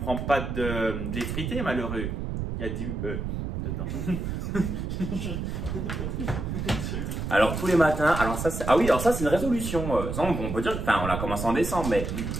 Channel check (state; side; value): noise; right; rumble, 4 dB below the sound